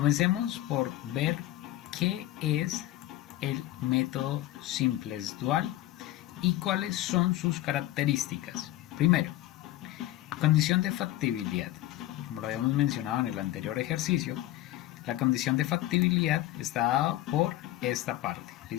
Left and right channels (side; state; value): right; quieter; 15.2 dB